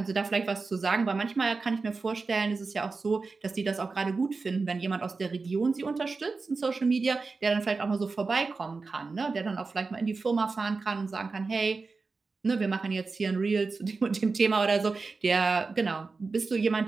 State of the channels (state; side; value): quieter; left; 4.2 dB